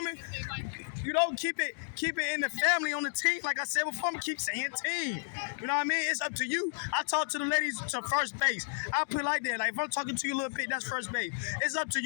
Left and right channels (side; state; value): right; silent; digital silence